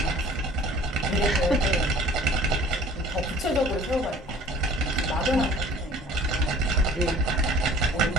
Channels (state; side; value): normal; both; correlation 0.49